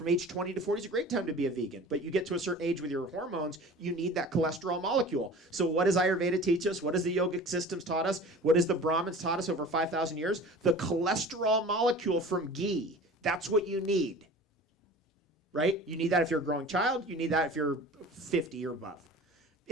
age 20 to 40 is a great time to be a vegan. But you get to a certain age with your hormones, you need that cholesterol molecule. So what does Ayurveda teach us? What does the yogic systems taught us? What does the Brahmins taught us over 5,000 years? The cholesterol molecule from ghee. That's what you need. Right? You need that if you're a growing child. You need that if you're 50 or above.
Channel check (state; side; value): normal; both; correlation 0.40